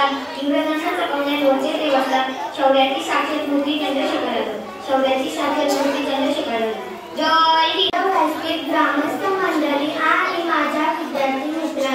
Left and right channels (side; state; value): both; identical; correlation 1.00